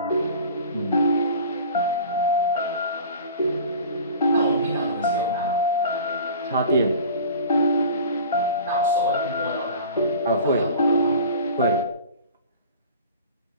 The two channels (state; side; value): inverted; both; correlation -0.41